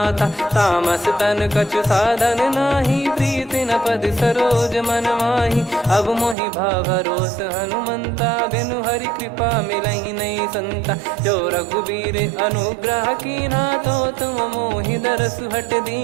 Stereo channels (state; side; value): drops out; left; at 6.4 s